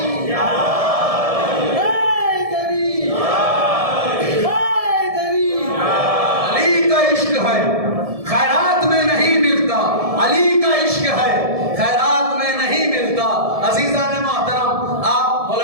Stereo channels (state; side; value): late; left; 1.7 ms